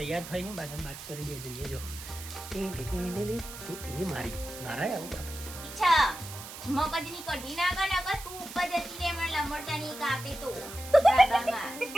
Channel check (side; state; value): right; noise; hiss, 12 dB below the sound